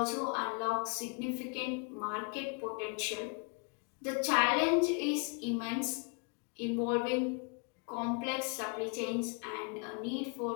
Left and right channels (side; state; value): right; quieter; 33.9 dB